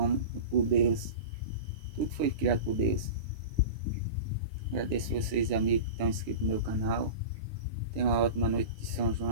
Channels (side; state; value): left; late; 9.7 ms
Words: por Deus. Tudo foi criado por Deus. Agradeço vocês, amigos, que estão inscritos no meu canal. Tenha uma ótima noite de São